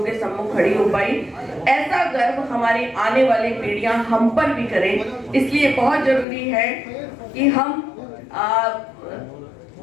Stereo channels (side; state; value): right; drops out; at 6.2 s